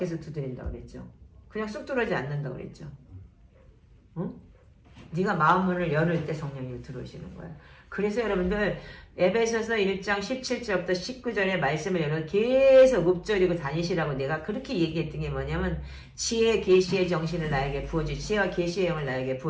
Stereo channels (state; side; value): identical; both; correlation 1.00